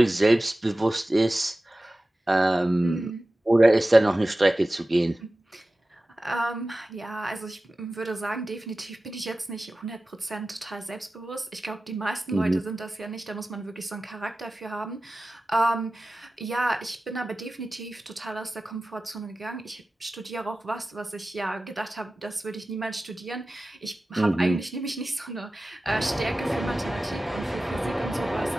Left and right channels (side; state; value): both; normal; correlation 0.95